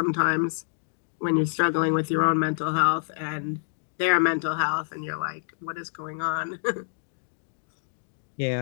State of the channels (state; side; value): silent; right; digital silence